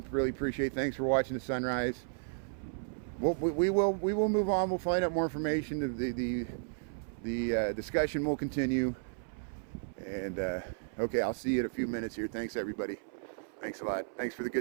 Really appreciate it. Thanks for watching the sunrise. We will move on. We'll find out more information. The discussion will continue. And okay, I'll see you in a few minutes here. Thanks everybody. Thanks a lot. Thanks for the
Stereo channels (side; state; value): left; silent; 55 dB below the other